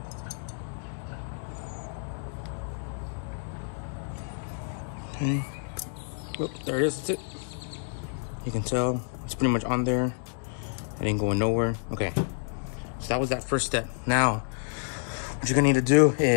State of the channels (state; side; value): silent; right; digital silence